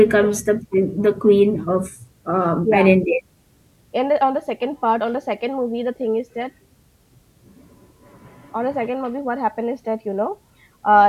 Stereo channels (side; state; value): both; identical; correlation 1.00